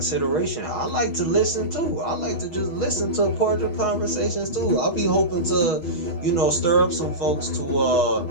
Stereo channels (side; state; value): right; late; 6.3 ms